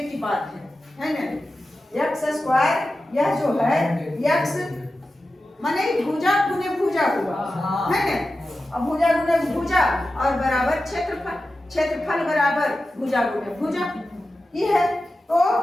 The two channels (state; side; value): normal; both; correlation 0.93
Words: बात है ना। x स्क्वायर यह जो है x माने भुजा गुने भुजा हुआ है ना। अब भुजा गुने भुजा और बराबर क्षेत्रफल बराबर भुजा गुने भुजा ये है। तो